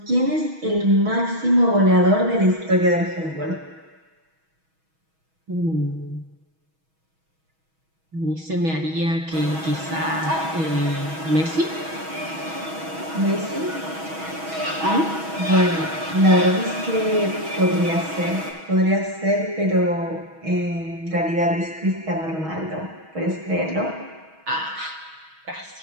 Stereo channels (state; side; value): late; left; 6.2 ms